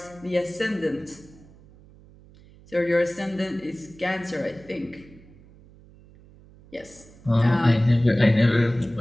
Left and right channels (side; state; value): right; noise; hum, 24 dB below the sound